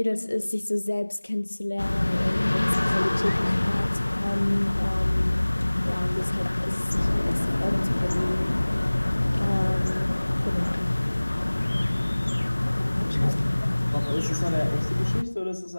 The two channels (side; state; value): both; inverted; correlation -1.00